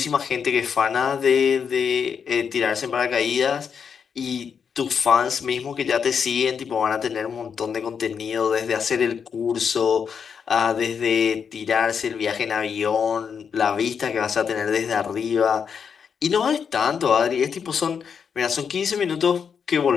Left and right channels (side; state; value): right; quieter; 6.7 dB